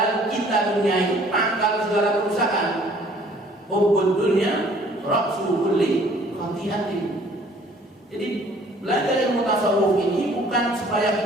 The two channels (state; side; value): normal; both; correlation 0.56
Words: cinta dunia itu pangkal segala kerusakan. Hubbud dunya ra'su kulli khati'atin. Jadi belajar ilmu tasawuf ini bukan supaya